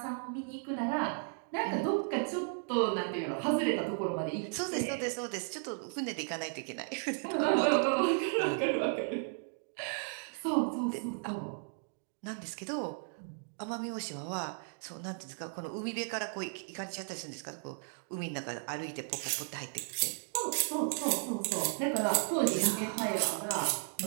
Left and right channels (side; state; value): left; silent; 54 dB below the other